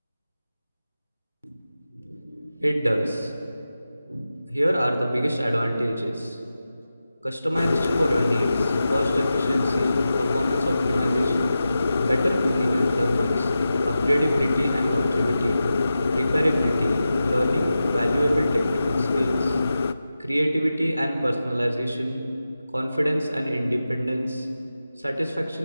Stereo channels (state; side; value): inverted; both; correlation -0.92